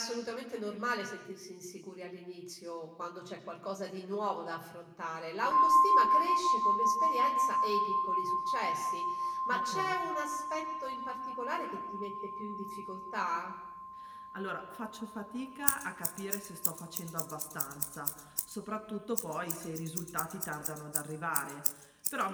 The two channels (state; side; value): identical; both; correlation 1.00